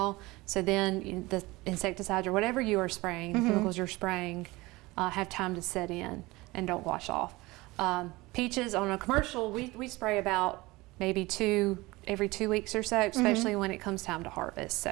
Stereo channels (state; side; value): quieter; left; 21.3 dB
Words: So then the insecticides or whatever you are spraying, the chemicals you're spraying, have time to set in and don't wash off. Peaches on a commercial, we spray about maybe every 2 weeks or so, especially when it comes time to harvest.